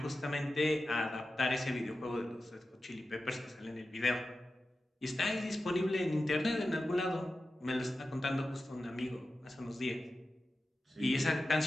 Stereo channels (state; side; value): normal; both; correlation 0.93